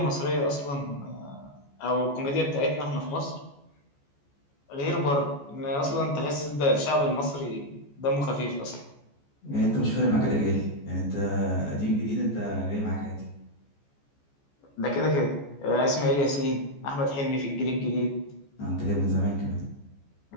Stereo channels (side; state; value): right; late; 14 ms